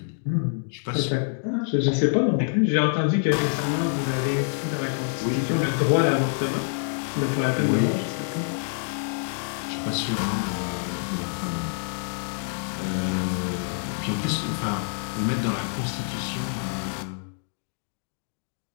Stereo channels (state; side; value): silent; right; digital silence